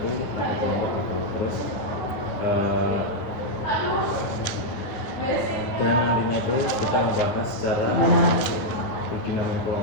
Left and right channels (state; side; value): late; right; 9.8 ms